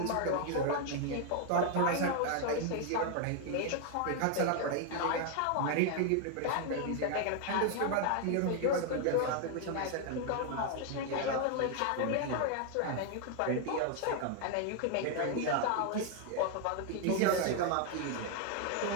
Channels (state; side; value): different; both; correlation 0.00